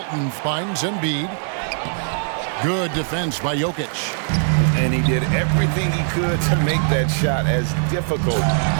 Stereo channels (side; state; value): left; silent; 62 dB below the other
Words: finds Embiid. Good defense by Jokic. And he did everything he could to make that shot as difficult